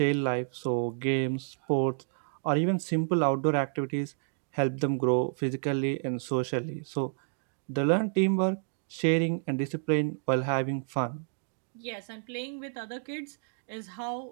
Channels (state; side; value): silent; left; 58 dB below the other